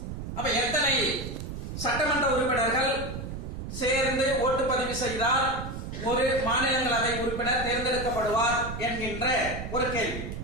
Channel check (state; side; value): noise; right; rumble, 7 dB below the sound